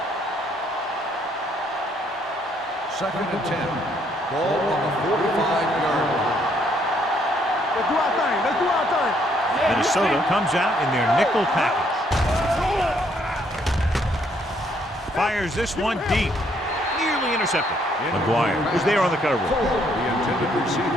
2nd and 10. Ball on the 45-yard line. Let's do our thing. Let's do our thing. Minnesota comes out in their nickel package. Fires this one deep. Nearly intercepted. McGuire was there on the coverage. The intended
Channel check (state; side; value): normal; both; correlation 0.69